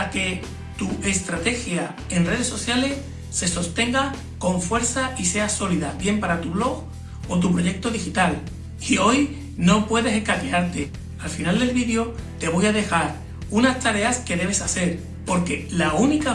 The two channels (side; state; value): both; identical; correlation 1.00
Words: que tu estrategia en redes sociales se sostenga con fuerza y sea sólida, bien para tu blog o tu proyecto digital. Y hoy no puedes escaquearte. Al final del vídeo te voy a dejar unas tareas que debes hacer, porque la única